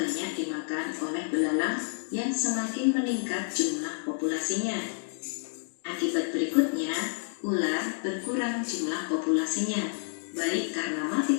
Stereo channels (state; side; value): silent; right; digital silence